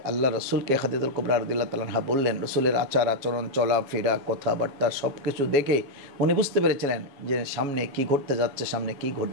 আল্লাহ রসুলকে খাদিজাতুল কুবরা রাদিয়াল্লাহু তাআলা আনহা বললেন, রসুলের আচার আচরণ চলাফেরা কথাবার্তা সব কিছু দেখে উনি বুঝতে পেরেছিলেন যে সামনে কি ঘটতে যাচ্ছে, সামনে কি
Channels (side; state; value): left; late; 7.3 ms